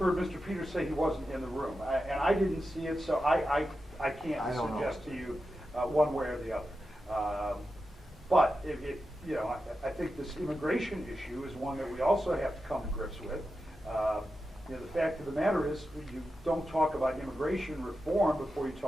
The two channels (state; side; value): normal; both; correlation 0.90